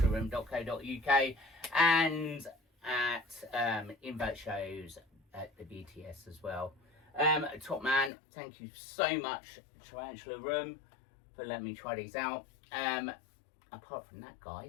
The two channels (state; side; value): drops out; right; at 8.1 s